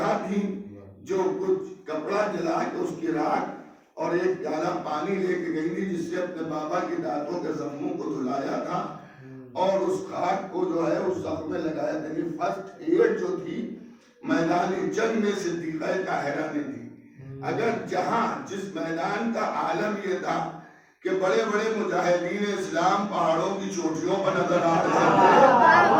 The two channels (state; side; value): identical; both; correlation 1.00